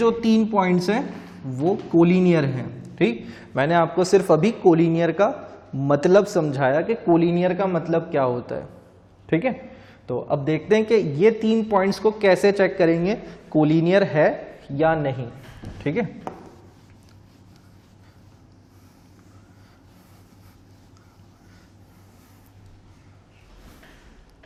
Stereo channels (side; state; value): both; identical; correlation 1.00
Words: 3 पॉइंट्स हैं वो कोलिनियर हैं। ठीक, मैंने आपको सिर्फ अभी कोलिनियर का मतलब समझाया कि कोलिनियर का मतलब क्या होता है। ठीक है, तो अब देखते हैं कि ये 3 पॉइंट्स को कैसे चेक करेंगे कोलिनियर है या नहीं। ठीक है,